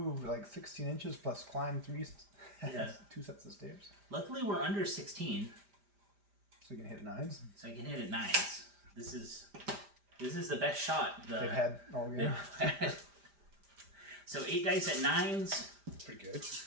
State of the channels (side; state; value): left; late; 5.0 ms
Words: like 16 inches plus climbed 2 sets of stairs. Luckily, we're under 16. So you can hit 9s. So I can hit at 9s. This is the best shot they've had all year. So 8 dice at 9s. Pretty good.